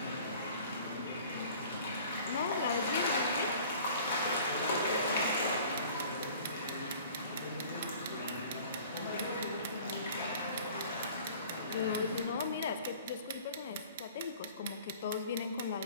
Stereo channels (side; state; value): both; inverted; correlation -0.48